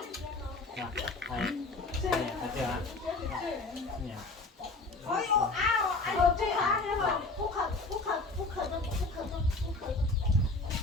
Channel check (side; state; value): right; quieter; 3.4 dB